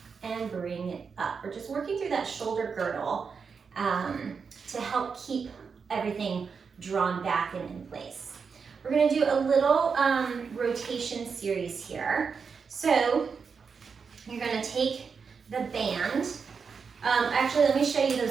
and bring it up. We're just working through that shoulder girdle to help keep everything drawn back and in place. We're gonna do a little rotation series here. So you're gonna take the band. Actually, let me show you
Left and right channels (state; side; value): quieter; left; 5.7 dB